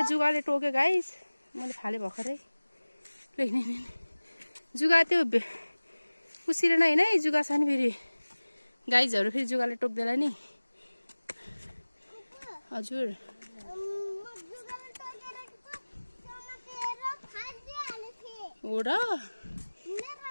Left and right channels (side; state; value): both; inverted; correlation -1.00